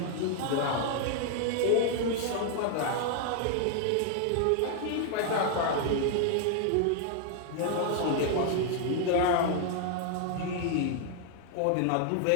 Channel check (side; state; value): both; different; correlation 0.00